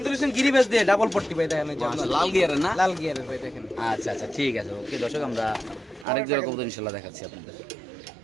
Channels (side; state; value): left; drops out; at 6.1 s